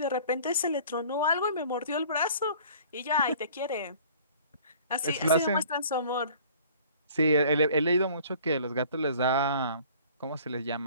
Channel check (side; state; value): both; inverted; correlation -0.50